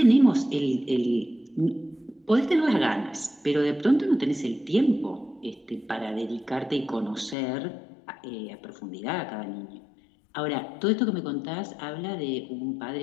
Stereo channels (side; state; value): right; drops out; at 7.4 s